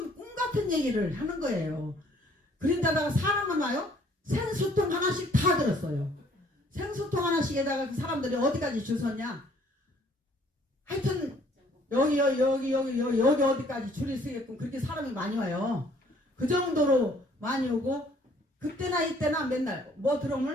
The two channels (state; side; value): normal; both; correlation 0.60